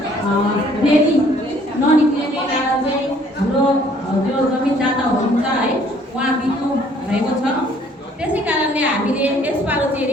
रेली ननिक्लिने कारण चाहिँ हाम्रो जो जमिनदाता हुनुहुन्छ है उहाँ बित्नु भएको छ। त्यसै कारणले हामीले यसपालि चाहिँ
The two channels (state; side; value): normal; both; correlation 0.60